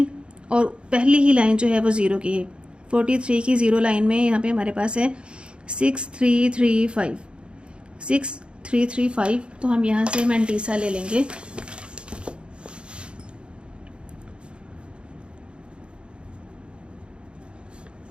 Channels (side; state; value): left; late; 0.055 ms